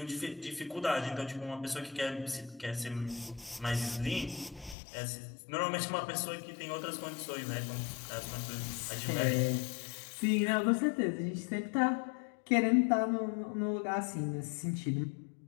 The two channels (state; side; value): drops out; right; at 4.8 s